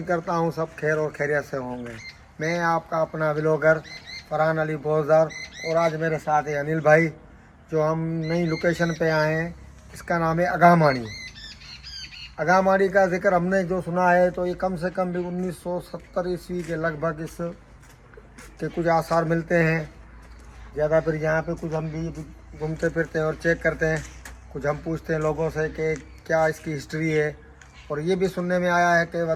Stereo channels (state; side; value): identical; both; correlation 1.00